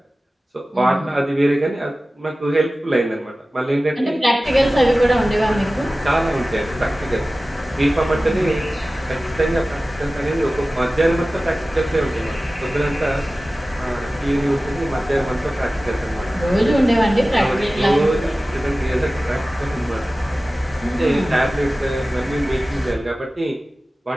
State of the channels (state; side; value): normal; both; correlation 0.96